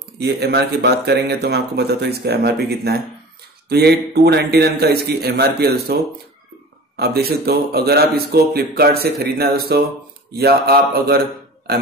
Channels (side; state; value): both; normal; correlation 0.38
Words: ये एमआरपी की बात करेंगे तो मैं आपको बताता हूँ इसका एमआरपी कितना है। तो ये 299 का इसकी एमआरपी है दोस्तों। आप देख सकते हो अगर आप इसको फ्लिपकार्ट से खरीदना है दोस्तों, या आप अगर